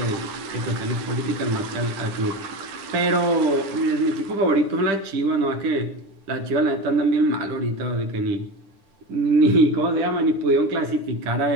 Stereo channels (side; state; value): left; late; 10 ms